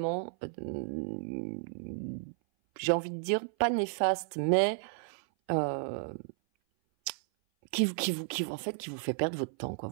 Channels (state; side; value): silent; left; 56 dB below the other